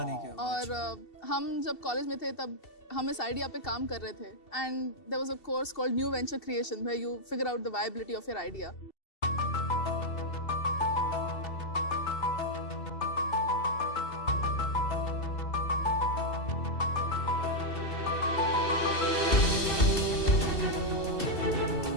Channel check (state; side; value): late; right; 2.7 ms